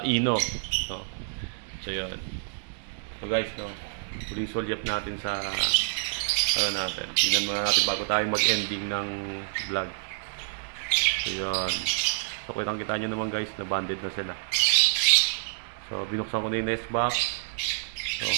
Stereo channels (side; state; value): left; silent; digital silence